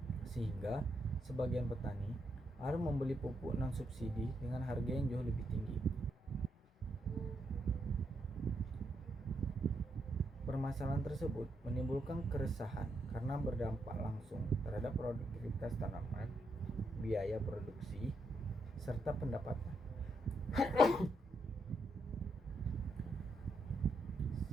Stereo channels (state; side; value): normal; both; correlation 0.79